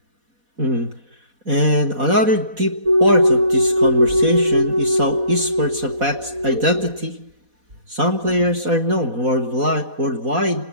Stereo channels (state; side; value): late; left; 4.1 ms